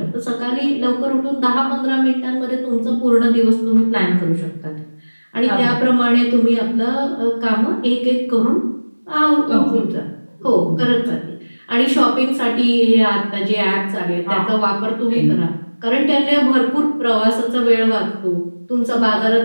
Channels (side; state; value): both; inverted; correlation -1.00